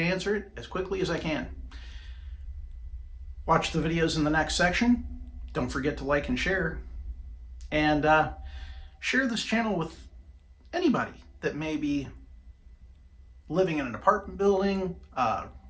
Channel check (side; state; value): both; identical; correlation 1.00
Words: answer it as quickly as I can. Watch the videos in the next section. Don't forget to like and share. And share this channel with anybody that may be living in an apartment building,